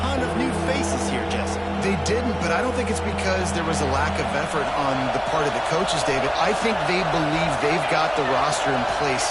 of new faces here, Jesse. They didn't, but I don't think it's because there was a lack of effort on the part of the coaches, David. I think they believe they've got the roster in place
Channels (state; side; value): identical; both; correlation 1.00